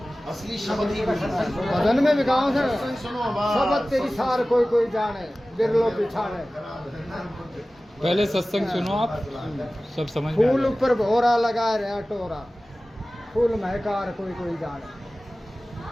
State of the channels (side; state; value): both; normal; correlation 0.97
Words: असली शब्द ही भजन में भी गाँव है, सत्संग सुनो बस। शब्द तेरी सार कोई कोई जाने, बिरलो पिछाने। पहले सत्संग सुनो आप, सब समझ में आ फूल जाएगा। ऊपर भोरा लगा रहा टोरा, फूल महकार कोई कोई जाने।